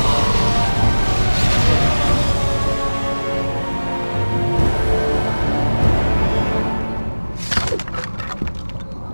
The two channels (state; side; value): inverted; both; correlation -1.00